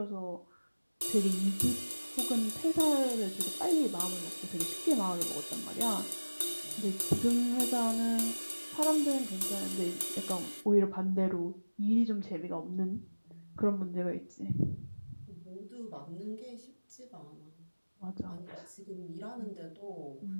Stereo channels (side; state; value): both; inverted; correlation -1.00